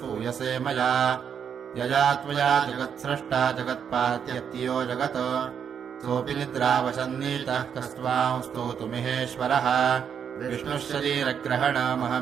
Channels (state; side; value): quieter; left; 7.7 dB